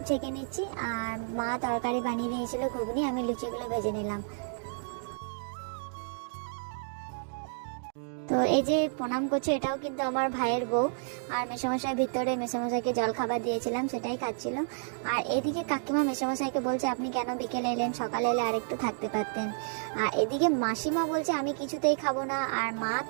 ছেঁকে নিচ্ছি। আর মা তরকারি বানিয়ে দিয়েছিল ঘুগনি, আমি লুচিগুলো ভেজে নিলাম। তো এই যে প্রণাম করছে, এটাও কিন্তু আমার ভাইয়ের বউ। আর মেসোমশাই ভিতরে মেসোমশাইকে জল খাবার দিয়েছিলাম, সেটাই খাচ্ছিল। আর এদিকে কাকিমা মেসোমশাইকে বলছে, আপনি কেন বিকেলে এলেন, সকালে এলে আরেকটু থাকতে পারতেন। আর এদিকে মাসিমা বলছে আমি কিছুতেই খাবো না, আর মা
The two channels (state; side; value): silent; left; 57 dB below the other